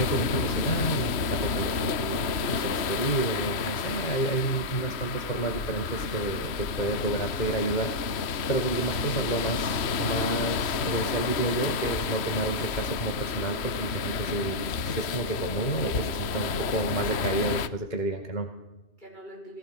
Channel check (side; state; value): right; late; 3.0 ms